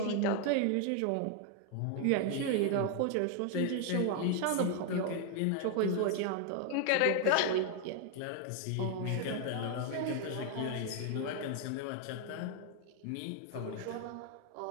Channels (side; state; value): both; different; correlation 0.00